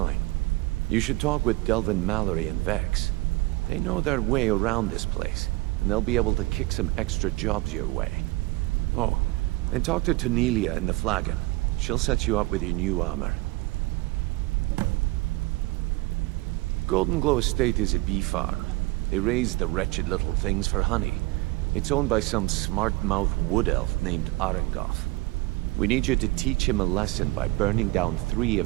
You should talk with Delvin Mallory and Vex. They know their way around this place, and they'll be able to kick some extra jobs your way. Oh, and talk to Tanelia in the Flagon. She'll set you up with your new armor. Golden Glow Estate is a bee farm. They raise the wretched little things for honey. It's owned by some smart-mouthed wood elf named Arengoth. We need you to teach him a lesson by burning down 3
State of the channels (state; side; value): quieter; left; 21.7 dB